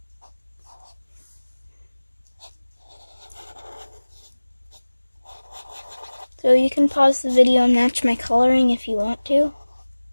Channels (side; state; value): both; inverted; correlation -1.00